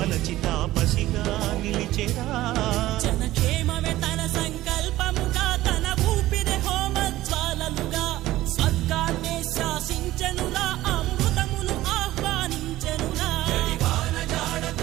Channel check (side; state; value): left; quieter; 15.9 dB